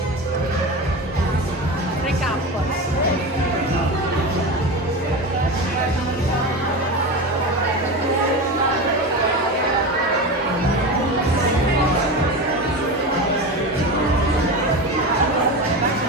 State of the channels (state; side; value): normal; both; correlation 0.24